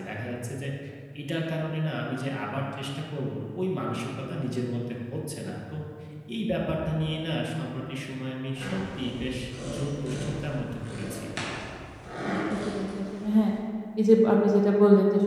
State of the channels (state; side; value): identical; both; correlation 1.00